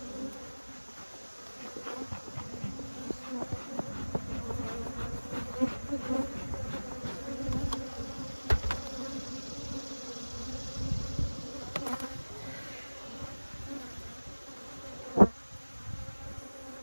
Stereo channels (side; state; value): both; inverted; correlation -1.00